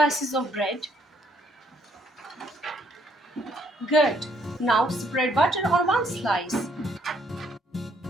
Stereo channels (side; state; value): both; normal; correlation 0.69